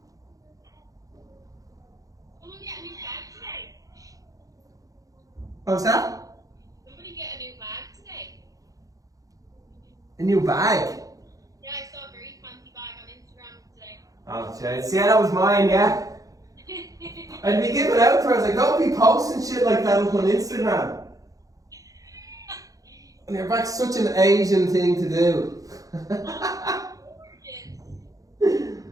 Someone get a new bag today. What was that? Somebody get a new bag today. A new bag? Yeah, I saw a very fancy bag on Instagram today. Oh, jeez. Yeah, that was mine, yeah. I'd be giving out to her. I was like, don't be posting shit like that up on Instagram. And your back's such an Asian thing to do.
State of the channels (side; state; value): left; late; 0.17 ms